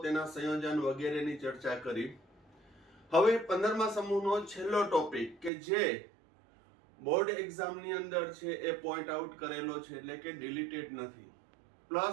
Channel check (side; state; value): left; drops out; at 5.5 s